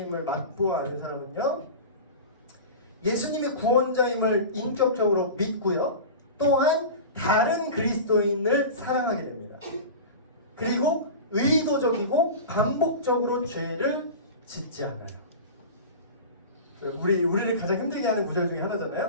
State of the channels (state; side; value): inverted; both; correlation -0.31